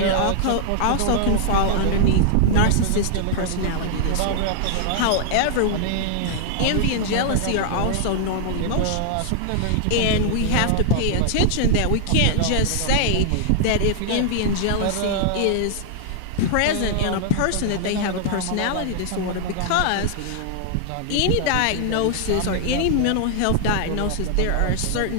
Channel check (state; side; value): different; both; correlation -0.01